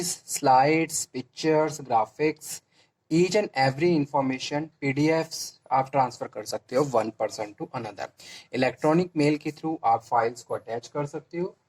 slides, pictures, graphics, each and every information, PDFs आप ट्रांसफर कर सकते हो one person to another. Electronic mail के थ्रू आप फाइल्स को अटैच कर सकते हो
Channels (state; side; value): identical; both; correlation 1.00